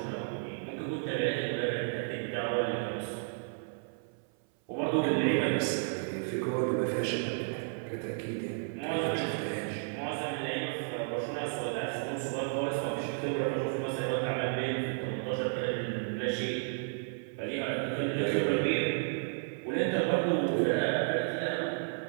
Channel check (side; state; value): left; silent; 56 dB below the other